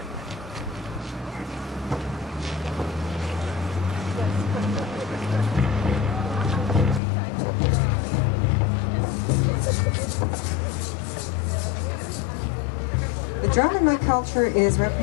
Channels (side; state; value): right; drops out; at 7.0 s